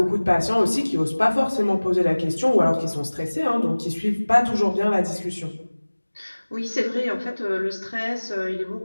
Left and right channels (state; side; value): inverted; both; correlation -1.00